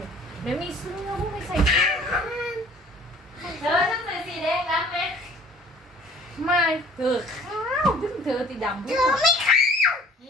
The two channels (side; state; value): both; normal; correlation 0.52